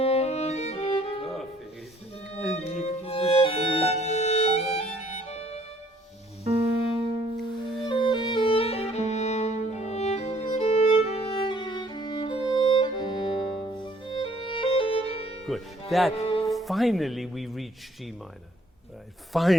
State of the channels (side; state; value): both; normal; correlation 0.61